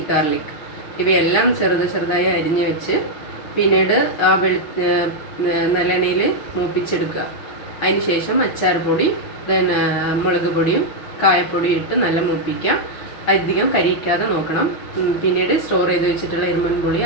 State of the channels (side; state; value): right; late; 6.1 ms